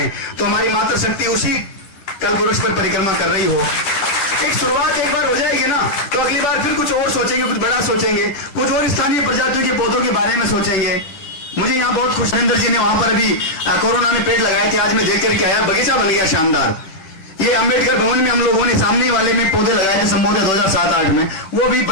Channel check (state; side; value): late; right; 10 ms